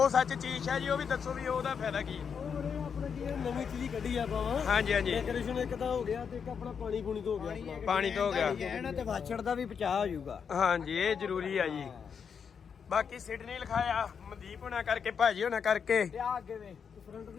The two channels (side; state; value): right; quieter; 6.7 dB